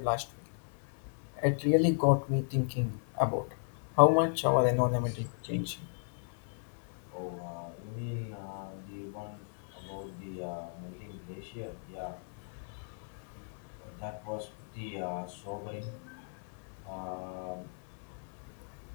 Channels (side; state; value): right; silent; digital silence